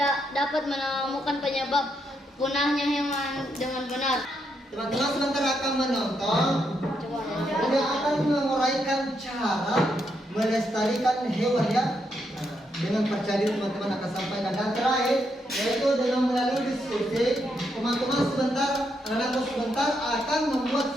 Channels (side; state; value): both; normal; correlation 0.79